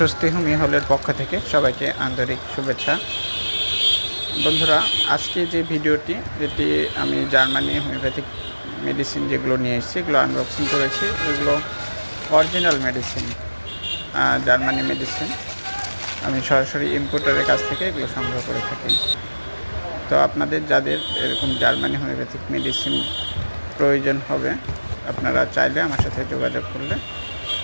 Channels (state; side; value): inverted; both; correlation -1.00